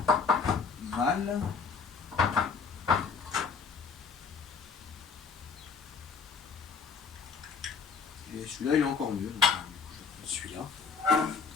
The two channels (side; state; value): right; quieter; 5.5 dB